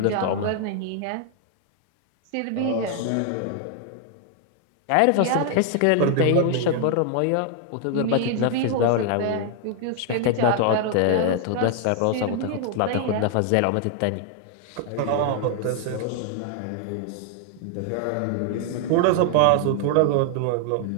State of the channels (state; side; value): different; both; correlation 0.00